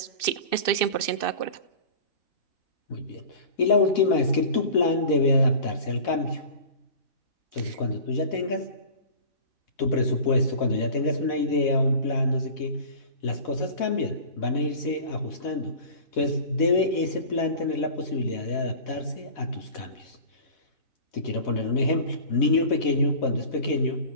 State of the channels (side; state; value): right; late; 2.6 ms